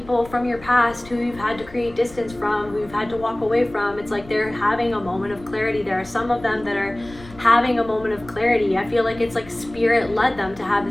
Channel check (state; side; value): noise; left; rumble, 19 dB below the sound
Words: from your past who you've had to create distance from, who you've had to walk away from. It's like they're having a moment of clarity. There are some of them that are having a moment of clarity. I feel like it's like Spirit led them to have